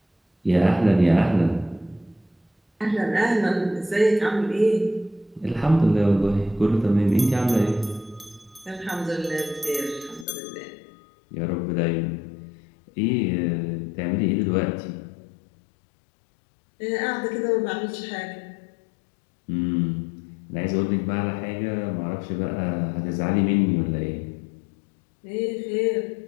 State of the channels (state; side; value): drops out; right; at 10.2 s